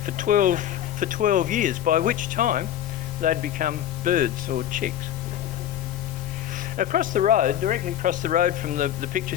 for 12 years, by which time they'd become birds or chicks. Across the road, directly across the road from the picture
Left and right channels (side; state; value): right; quieter; 11.3 dB